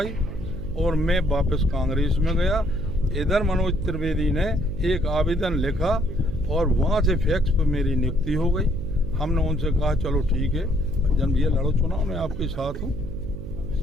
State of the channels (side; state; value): right; noise; hum, 9 dB below the sound